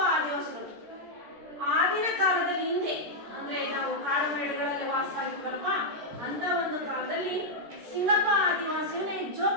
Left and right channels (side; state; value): left; late; 13 ms